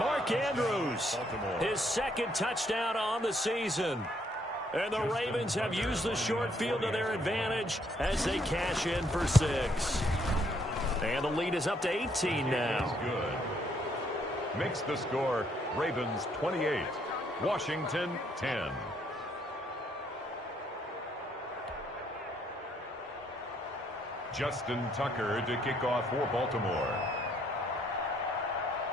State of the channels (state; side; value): normal; both; correlation 0.70